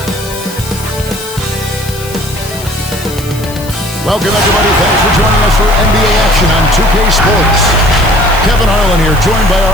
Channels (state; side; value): noise; left; hiss, 16 dB below the sound